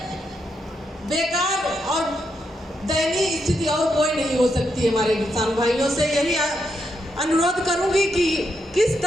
बेकार और दयनीय स्थिति और कोई नहीं हो सकती। हमारे किसान भाइयों से यही अनुरोध करूंगी कि किस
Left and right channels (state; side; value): normal; both; correlation 0.81